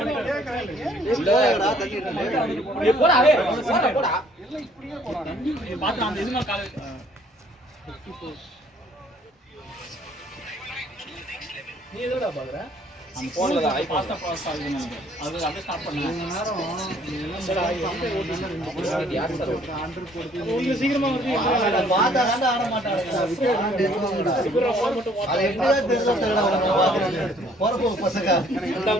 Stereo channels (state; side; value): normal; both; correlation 0.60